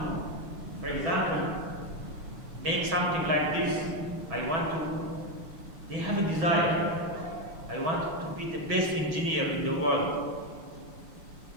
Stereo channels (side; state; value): left; late; 6.2 ms